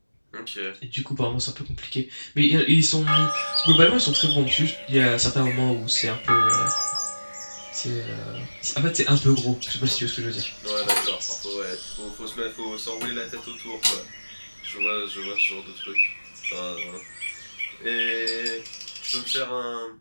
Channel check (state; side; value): inverted; both; correlation -1.00